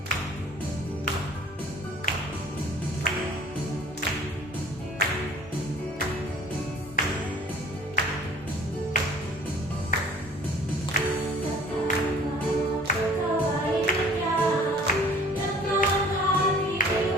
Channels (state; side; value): normal; both; correlation 0.51